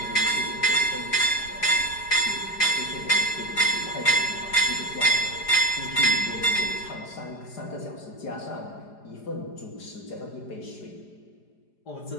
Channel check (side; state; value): right; late; 4.9 ms